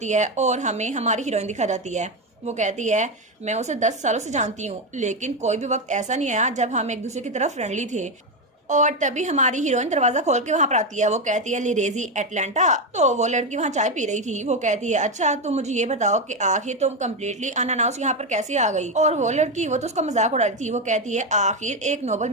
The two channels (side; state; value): both; normal; correlation 0.10